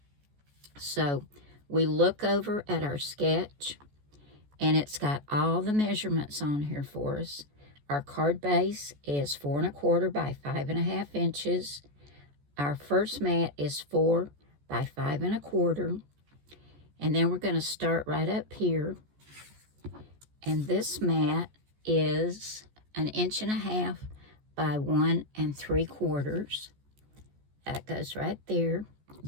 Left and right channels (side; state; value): left; late; 14 ms